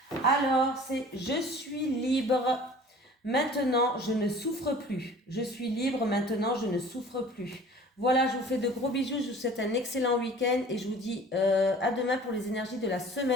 Alors, c'est « Je suis libre, maintenant je ne souffre plus. Je suis libre, maintenant je ne souffre plus. » Voilà, je vous fais de gros bisous, je vous souhaite un excellent week-end et je vous dis à demain pour les énergies de la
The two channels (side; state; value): both; normal; correlation 0.46